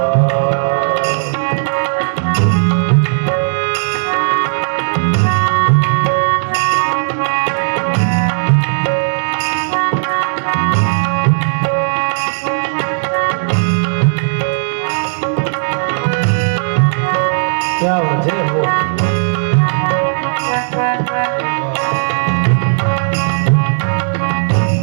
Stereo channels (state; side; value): silent; left; digital silence